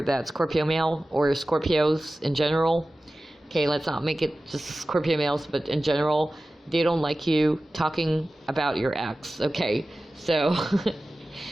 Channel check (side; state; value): both; normal; correlation 0.96